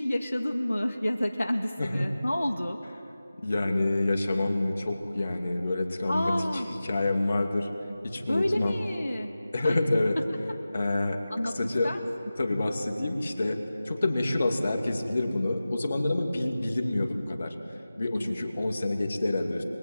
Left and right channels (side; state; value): both; inverted; correlation -0.96